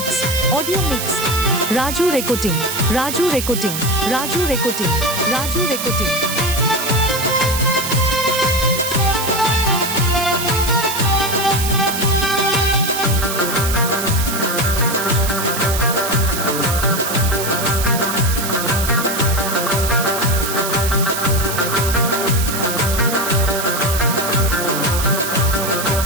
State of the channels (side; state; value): right; noise; hiss, 5 dB below the sound